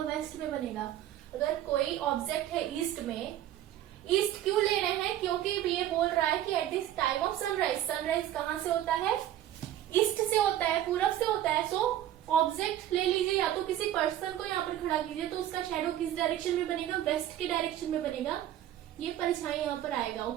वेस्ट में बनेगा. अगर कोई ऑब्जेक्ट है ईस्ट में, ईस्ट क्यों ले रहे हैं, क्योंकि ये बोल रहा है कि at this time of sunrise, sunrise कहाँ से होता है, ईस्ट से होता है, पूरब से होता है. सो ऑब्जेक्ट ले लीजिए, या तो किसी पर्सन को यहाँ पर खड़ा कीजिए, तो उसका शैडो किस डायरेक्शन में बनेगा, वेस्ट की डायरेक्शन में बनेगा. ये परछाई यहाँ पर आएगा.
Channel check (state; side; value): quieter; left; 12.3 dB